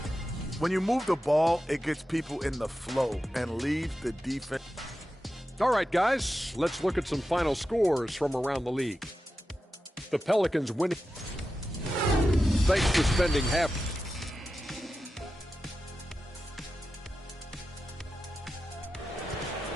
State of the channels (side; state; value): both; normal; correlation 0.92